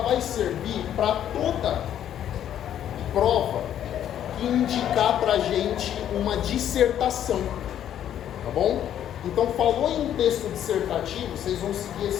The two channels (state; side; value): quieter; right; 10.5 dB